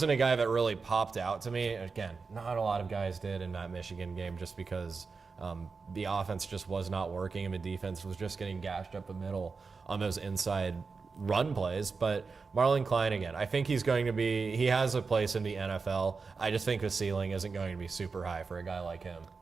a guy that really popped out to me. Again, not a lot of guys did in that Michigan game just because the offense just was not working and the defense was just getting gashed up the middle on those inside run plays. But Marlon Klein, again, I think he has a place in the NFL. I just think the ceiling isn't going to be super high for a guy like him.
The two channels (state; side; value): quieter; left; 4.7 dB